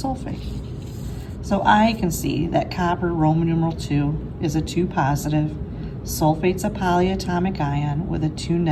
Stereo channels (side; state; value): both; identical; correlation 1.00